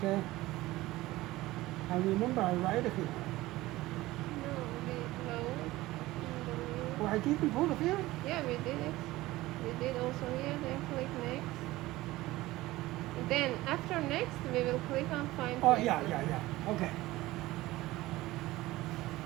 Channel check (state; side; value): quieter; left; 18.1 dB